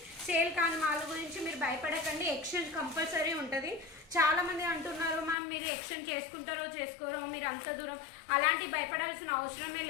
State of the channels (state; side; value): drops out; right; at 5.4 s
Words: సేల్ కాని మాల్ గురించి మీరు భయపడకండి. ఎక్స్చేంజ్ కంపల్సరీ ఉంటుంది. చాలా మంది అంటున్నారు మ్యామ్ మీరు ఎక్స్చేంజ్ చేసుకుంటారో చేసుకోరో, మీరు అంత దూరం, అలాంటి భయపడాల్సిన అవసరమే